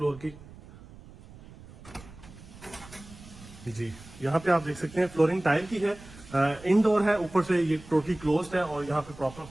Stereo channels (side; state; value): right; noise; rumble, 19 dB below the sound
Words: की। जी यहाँ पे आप देख सकते हैं फ्लोरिंग टाइल की है, इनडोर है, ऊपर से ये टोटली क्लोज्ड है और यहाँ पे प्रॉपर